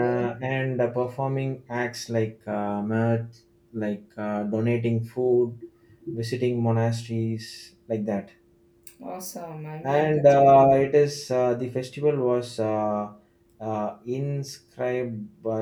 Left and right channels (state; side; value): identical; both; correlation 1.00